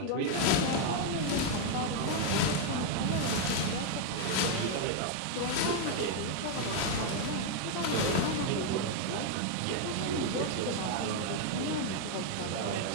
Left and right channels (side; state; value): both; different; correlation 0.00